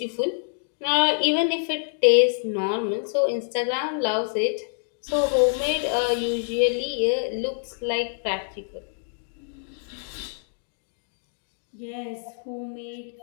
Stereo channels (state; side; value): silent; right; digital silence